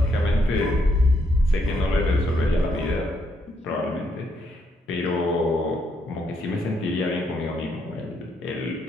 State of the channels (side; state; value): both; normal; correlation 0.75